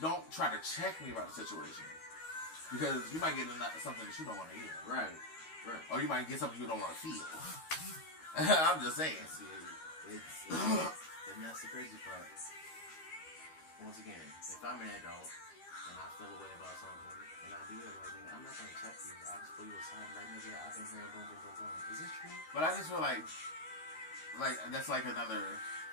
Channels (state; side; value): late; right; 13 ms